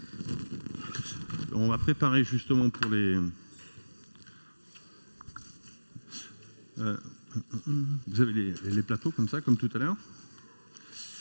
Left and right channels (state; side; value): inverted; both; correlation -1.00